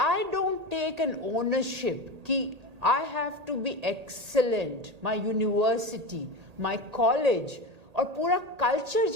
don't take an ownership कि I have to be excellent, my university, my college, और पूरा culture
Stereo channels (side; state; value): left; late; 1.8 ms